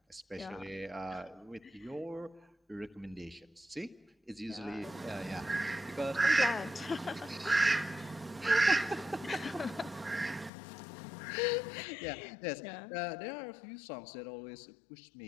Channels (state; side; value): drops out; right; at 10.5 s